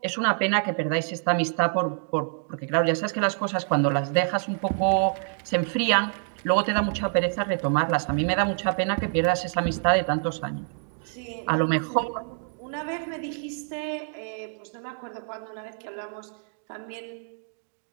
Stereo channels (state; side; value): silent; left; 56 dB below the other